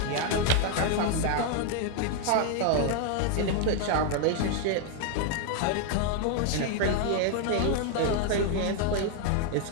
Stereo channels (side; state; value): both; different; correlation 0.00